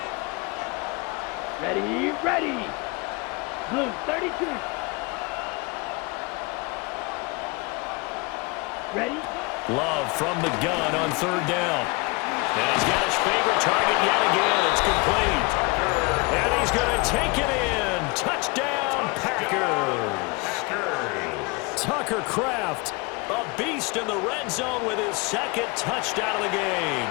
Ready, ready. Blue, 32. Ready? Love from the gun on 3rd down. And he's got his favorite target yet again. It's complete. And he's going to take it in. Touchdown, Packers. Tucker Kraft, a beast in the red zone with his 2nd touchdown of the game.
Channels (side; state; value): right; quieter; 27.3 dB